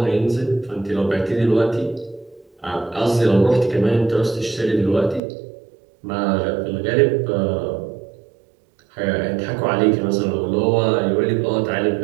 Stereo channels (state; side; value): drops out; left; at 5.2 s